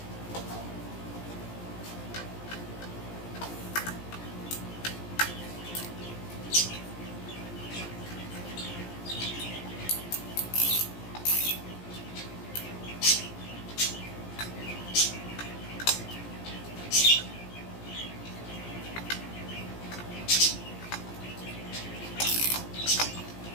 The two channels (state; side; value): late; right; 17 ms